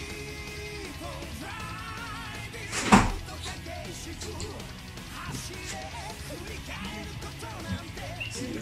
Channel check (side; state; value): both; identical; correlation 1.00